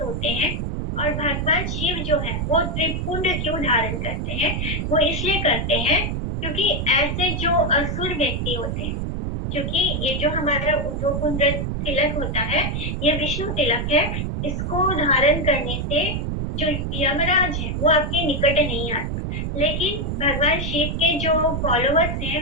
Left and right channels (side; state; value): right; noise; rumble, 2 dB below the sound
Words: होते हैं। और भगवान शिव जो है वो त्रिपुंड क्यों धारण करते हैं? वो इसलिए करते हैं क्योंकि ऐसे जो असुर व्यक्ति होते हैं, क्योंकि ये जो हमारा जो कुंड तिलक होता है ये विष्णु तिलक है, इसको धारण करने से जो यमराज है वो आपके निकट नहीं आते। लेकिन भगवान शिव के जो फॉलोवर्स